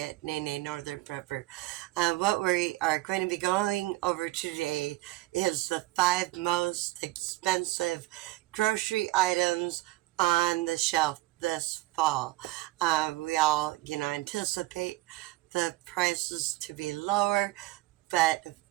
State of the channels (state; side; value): quieter; left; 19.3 dB